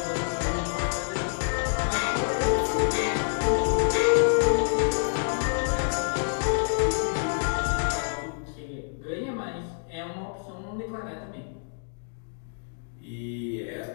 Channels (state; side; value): silent; right; digital silence